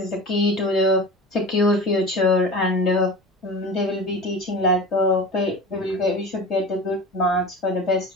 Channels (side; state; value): both; normal; correlation 0.33